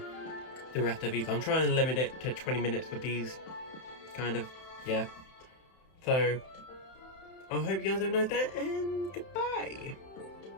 the rest of these. I'm trying to limit it to 20 minutes with these, kind of, yeah. So, I hope you guys have a nice day, and goodbye!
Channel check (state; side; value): late; right; 31 ms